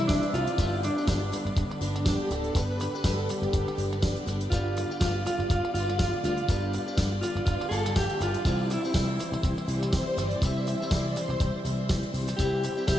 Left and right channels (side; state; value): both; normal; correlation 0.86